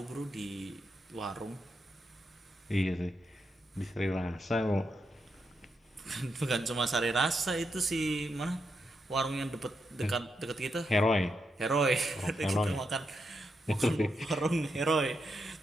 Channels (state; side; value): normal; both; correlation 0.83